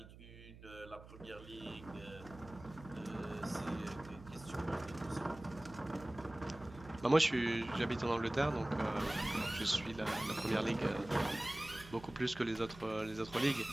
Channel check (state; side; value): noise; right; hum, 17 dB below the sound